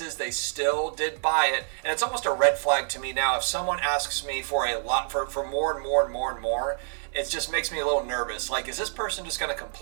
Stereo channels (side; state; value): left; silent; digital silence